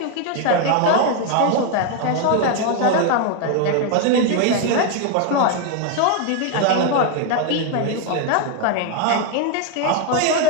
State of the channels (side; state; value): both; different; correlation 0.01